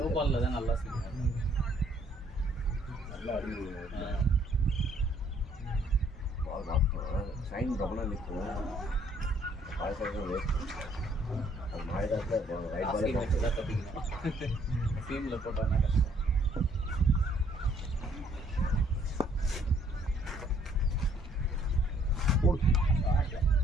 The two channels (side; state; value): both; normal; correlation 0.64